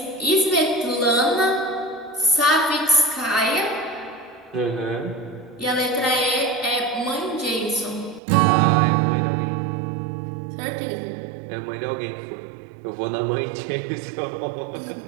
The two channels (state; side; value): drops out; left; at 8.2 s